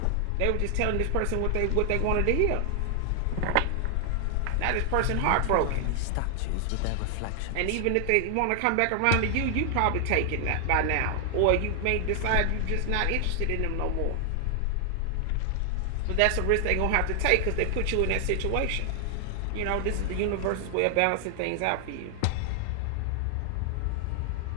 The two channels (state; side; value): different; both; correlation 0.00